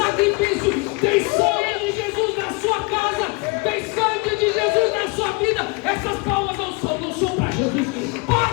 tem sangue de Jesus na sua casa, tem sangue de Jesus na sua vida. Essas palmas não são para Jesus.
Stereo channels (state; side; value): quieter; right; 28.4 dB